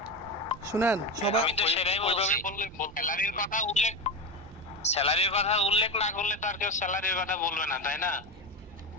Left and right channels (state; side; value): normal; both; correlation 0.18